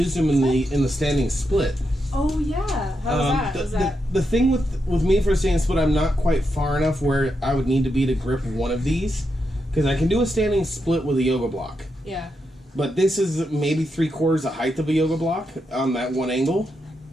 them in the standing split. Oh, yeah. How was that? The thing with me for a standing split, I'm not quite far enough where I would need to be to grip one of these, because I can do a standing split with a yoga block. Yeah. But this is maybe 3/4 the height of a yoga block on that one angle.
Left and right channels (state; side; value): normal; both; correlation 0.84